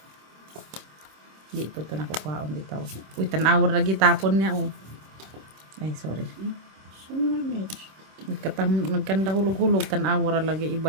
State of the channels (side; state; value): left; late; 26 ms